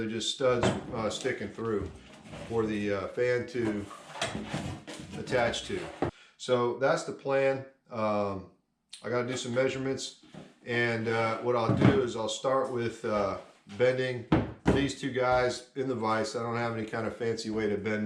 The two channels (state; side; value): identical; both; correlation 1.00